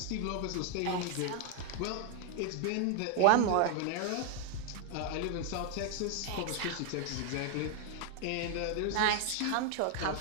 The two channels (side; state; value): both; different; correlation 0.00